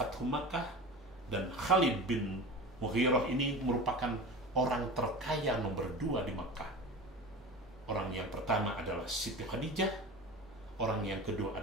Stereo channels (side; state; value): both; normal; correlation 0.33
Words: Makkah, dan Khalid bin Mughirah ini merupakan orang terkaya nomor 2 di Makkah. Orang yang pertama adalah Siti Khadijah, orang yang kedua